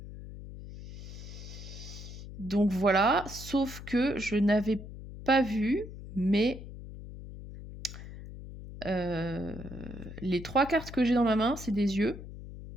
voilà, sauf que je n'avais pas vu, mais les 3 cartes que j'ai dans ma main, c'est des yeux.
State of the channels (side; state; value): left; noise; hum, 12 dB below the sound